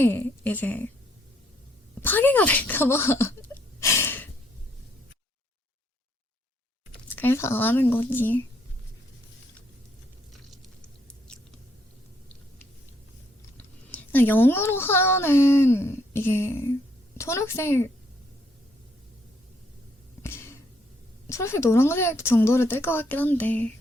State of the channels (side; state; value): both; normal; correlation 0.70